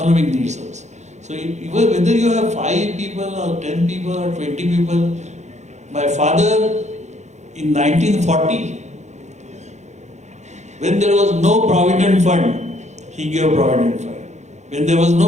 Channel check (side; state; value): left; late; 0.33 ms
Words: needs also. So even whether you have 5 people or 10 people or 20 people, my father in 1940, when there was no provident fund, he gave provident fund. When there was